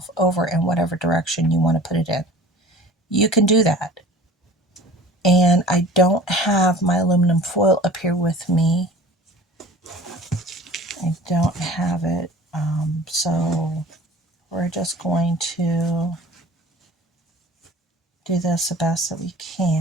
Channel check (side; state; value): both; normal; correlation 0.44